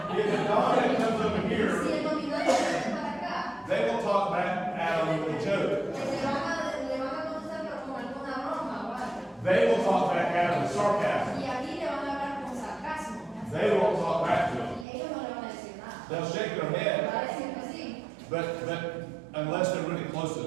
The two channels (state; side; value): drops out; left; at 14.9 s